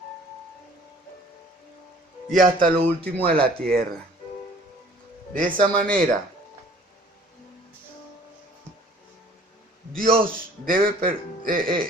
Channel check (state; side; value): normal; both; correlation 0.53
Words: y hasta lo último de la tierra. De esa manera, Dios